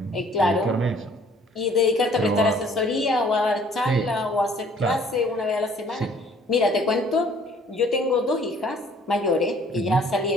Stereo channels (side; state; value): both; normal; correlation 0.57